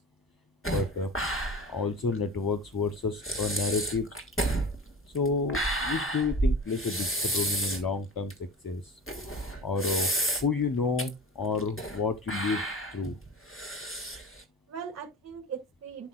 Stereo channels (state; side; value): normal; both; correlation 0.35